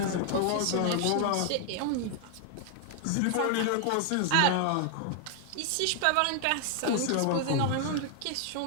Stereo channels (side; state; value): both; different; correlation 0.00